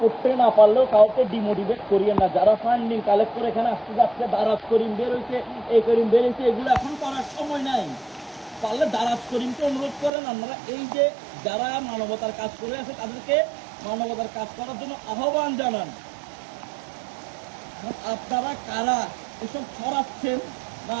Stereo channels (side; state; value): left; drops out; at 10.1 s